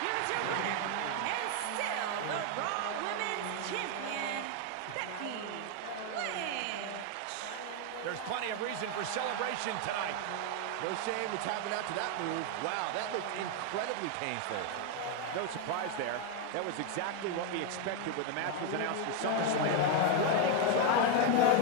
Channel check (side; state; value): both; different; correlation 0.01